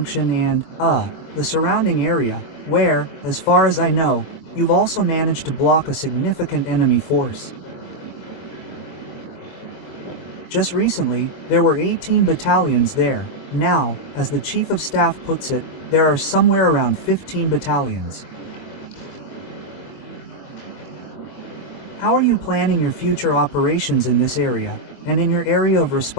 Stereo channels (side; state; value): right; late; 23 ms